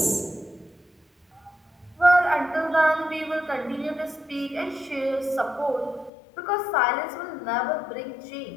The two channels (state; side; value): drops out; right; at 6.1 s